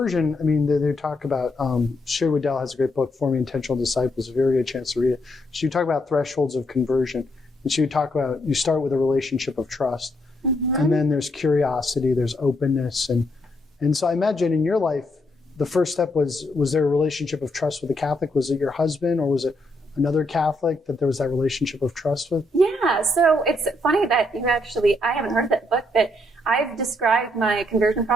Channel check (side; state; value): both; normal; correlation 0.76